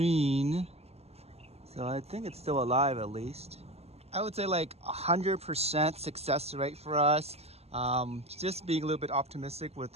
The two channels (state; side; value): late; left; 0.30 ms